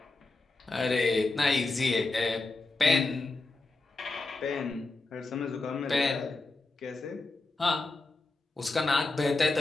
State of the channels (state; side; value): quieter; right; 3.2 dB